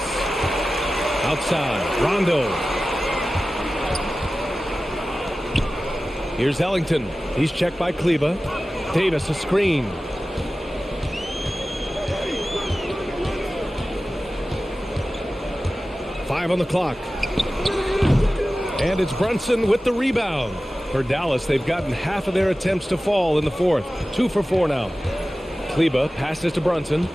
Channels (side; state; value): both; normal; correlation 0.95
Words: Outside. Rondo. Here's Ellington. He's checked by Kleber. Davis a screen. Five on the clock. And it's Brunson with the rebound. For Dallas, they've gotten half of their attempts to fall in the fourth. 2 for 4 now. Kleber passes to Brunson.